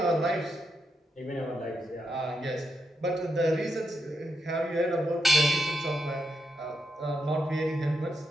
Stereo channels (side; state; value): both; normal; correlation 0.82